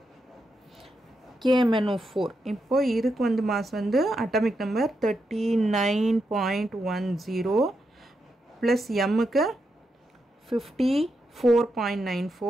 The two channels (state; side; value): normal; both; correlation 0.84